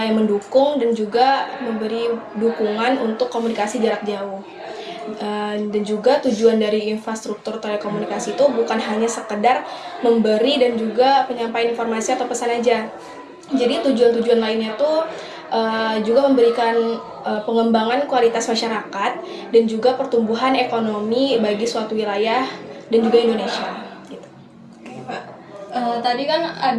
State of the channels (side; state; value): both; identical; correlation 1.00